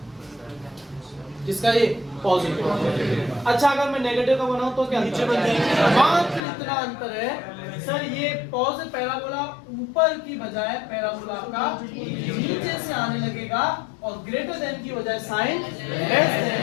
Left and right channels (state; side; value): drops out; right; at 6.4 s